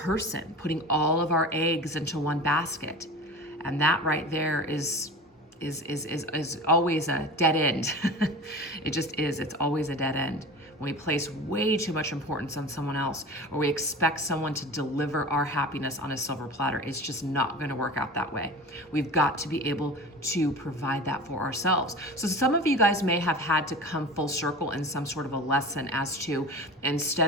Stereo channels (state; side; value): normal; both; correlation 0.35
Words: putting all of our eggs into one basket. And that right there is always a dead end. It just is. It's always a dead end. When we place way too much importance on someone else, or we expect someone to deliver our happiness on a silver platter, it's just not going to work out that way. We've got to be able to provide that for ourselves. So some of you guys may have had to come full circle in some sort of a lesson as to,